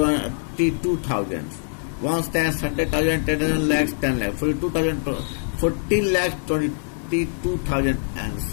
1 stands 100,000, 10 lakhs, 10 lakhs. 42,000, 14 lakhs 22,000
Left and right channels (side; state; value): right; silent; digital silence